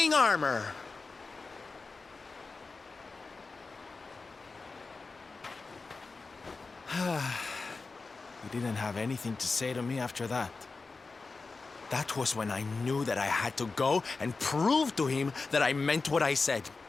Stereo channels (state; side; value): quieter; right; 4.0 dB